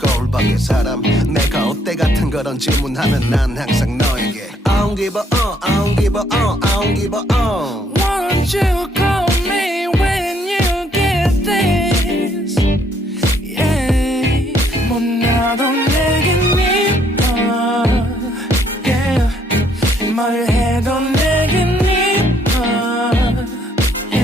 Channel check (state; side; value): normal; both; correlation 0.68